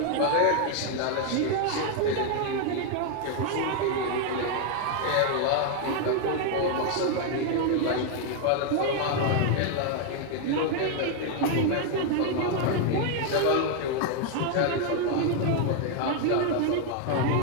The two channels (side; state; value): both; different; correlation 0.00